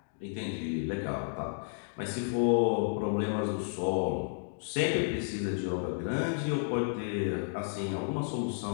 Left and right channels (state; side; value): silent; right; digital silence